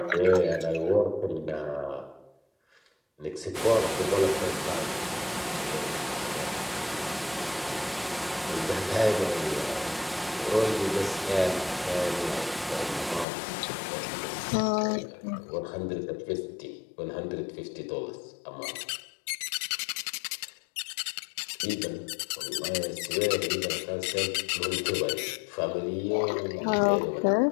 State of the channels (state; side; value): drops out; right; at 13.2 s